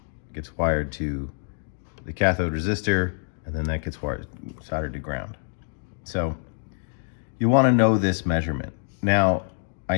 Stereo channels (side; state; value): right; silent; digital silence